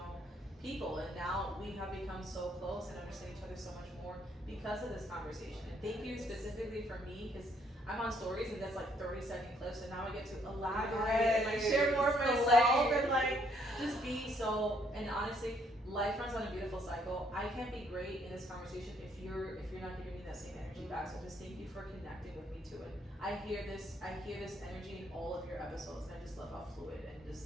people, and now we have become so close and understand each other so much more because of this conversation. And thank you specifically for me, because I'm on stories and that's like 30-second clips, and now I get to elaborate and like share more of myself and like just be so. And honestly, life runs on a beautiful cycle. I can't be great in this conversation if you're not giving me that same energy back. So just thank you for connecting with me to it. I hear this energy in all of your episodes, and I just love how fluid and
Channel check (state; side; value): normal; both; correlation 0.68